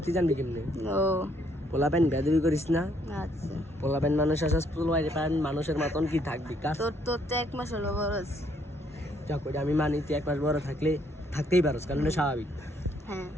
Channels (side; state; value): both; normal; correlation 0.69